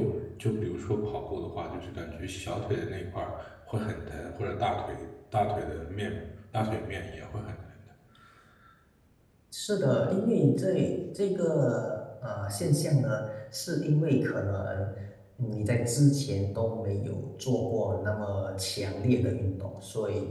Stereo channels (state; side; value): identical; both; correlation 1.00